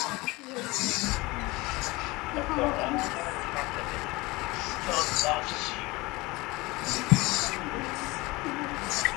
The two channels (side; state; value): right; quieter; 22.4 dB